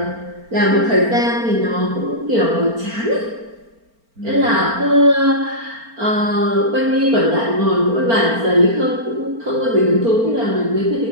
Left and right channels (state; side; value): late; left; 4.4 ms